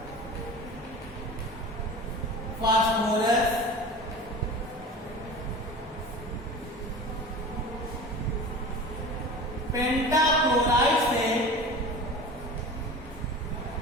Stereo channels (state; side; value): normal; both; correlation 0.35